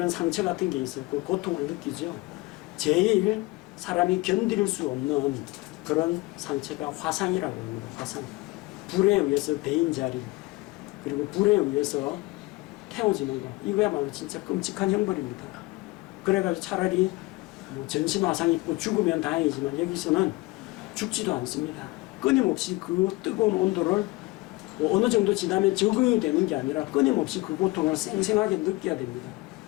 상처 같은 게 있었고 고통을 느끼죠. 제일 사람이 견딜 수 없는 그런 상처가 화상이라고 합니다. 화상. 불에 의해서 데인 자리, 그리고 불에 의해서 태워지는 거. 이거야말로 진짜 끔찍한 형벌입니다. 그래가지고 차라리 뭐 전신 화상 입고 죽으면 다행이지만 여기서는 죽지도 않습니다. 끊임없이 그 뜨거운 온도를 뭐 어느 정도 지나면 적응이 되는 게 아니라 끊임없이 그 고통을 생생하게 느껴야 됩니다.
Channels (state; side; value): quieter; right; 22.0 dB